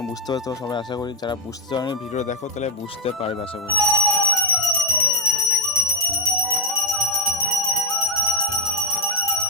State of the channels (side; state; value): both; normal; correlation 0.01